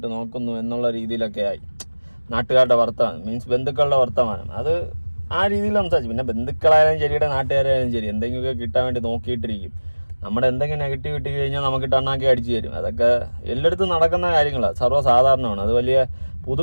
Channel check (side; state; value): both; inverted; correlation -1.00